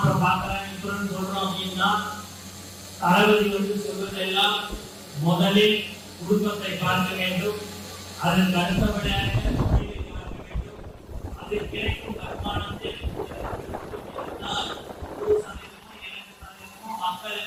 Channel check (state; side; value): identical; both; correlation 1.00